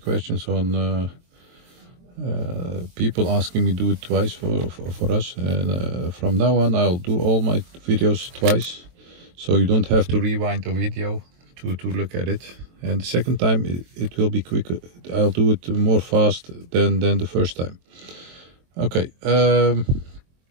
on people asking me to do it twice for us, and from now on I'll do all my videos twice, so you don't have to rewind the video to look at it. And the second time it will be quicker. I'll do it more fast than the first time. Okay.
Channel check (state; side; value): late; left; 23 ms